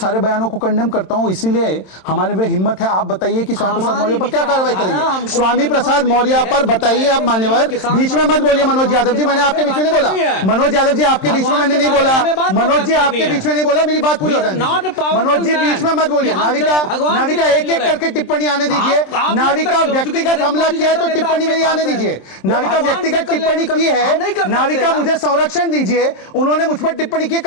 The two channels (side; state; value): right; late; 27 ms